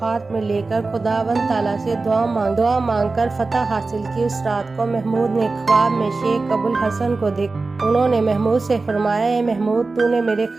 में लेकर खुदावंद ताला से दुआ मांगकर फतह हासिल की, उस रात को महमूद ने ख्वाब में शेख अबुल हसन को देखा। उन्होंने महमूद से फरमाया, महमूद, तूने मेरे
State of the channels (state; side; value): quieter; left; 3.7 dB